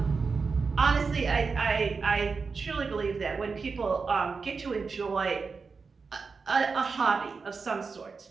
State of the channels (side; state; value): left; quieter; 4.8 dB